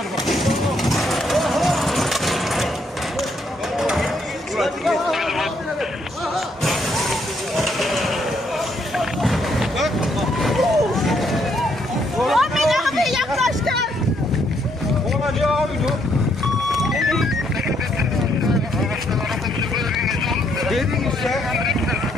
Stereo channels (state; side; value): normal; both; correlation 0.72